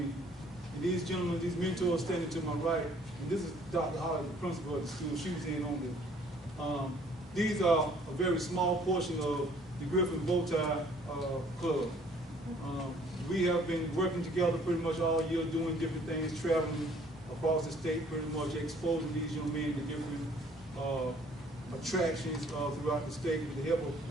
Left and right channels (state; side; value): normal; both; correlation 0.58